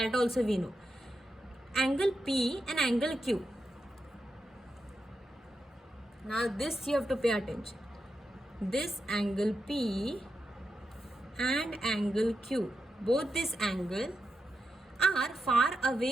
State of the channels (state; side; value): normal; both; correlation 0.87